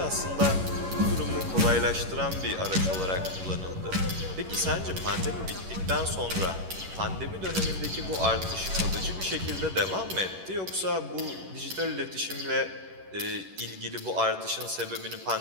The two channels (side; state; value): left; late; 11 ms